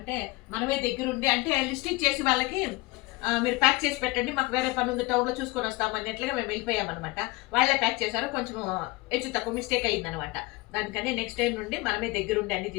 మనమే దగ్గరుండి అంటే లిస్ట్ ఇచ్చేసి వాళ్ళకి మీరు ప్యాక్ చేసి పెట్టండి, మాకు వేరే పని ఉంది టౌన్లో చూసుకొని వస్తాము అన్నట్లుగా మేము వెళ్ళిపోయామన్నమాట. వాళ్ళే ప్యాక్ చేశారు, కొంచెం హెచ్చు తక్కువ మిస్టేక్ అయిందనమాట. దానికని నెక్స్ట్ టైం నుండి మనమే దగ్గరుండి అన్ని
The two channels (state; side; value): quieter; right; 22.5 dB